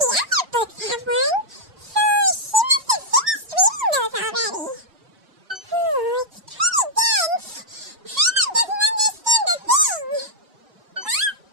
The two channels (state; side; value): late; left; 2.7 ms